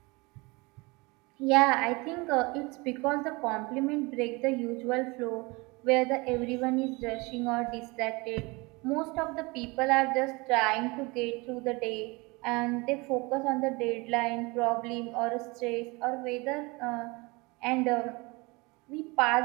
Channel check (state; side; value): quieter; left; 25.7 dB